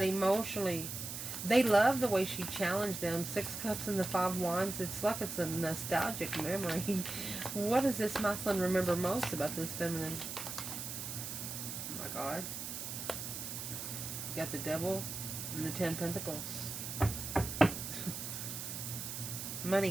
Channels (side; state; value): right; noise; hiss, 6 dB below the sound